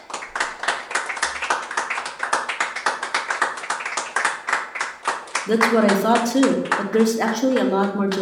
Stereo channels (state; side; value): identical; both; correlation 1.00